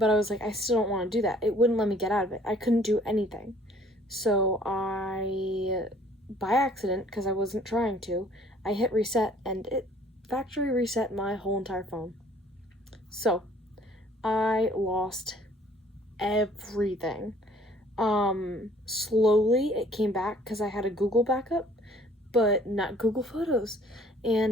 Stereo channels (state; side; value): normal; both; correlation 0.56